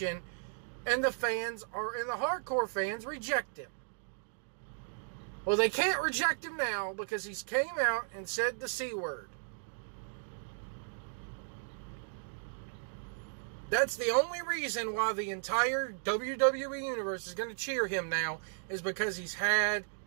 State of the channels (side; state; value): left; silent; digital silence